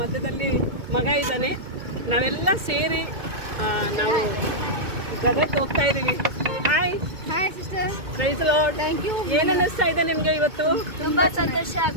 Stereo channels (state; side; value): late; left; 2.2 ms